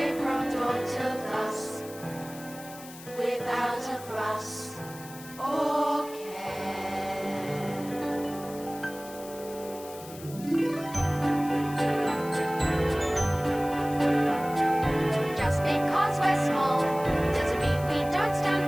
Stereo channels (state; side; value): noise; left; hiss, 17 dB below the sound